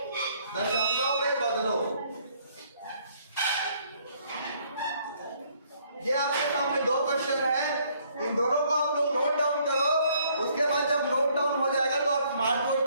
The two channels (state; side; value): inverted; both; correlation -0.65